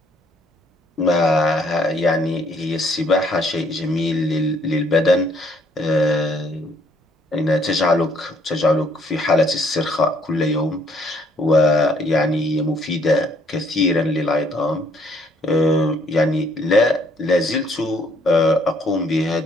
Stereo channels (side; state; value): both; normal; correlation 0.65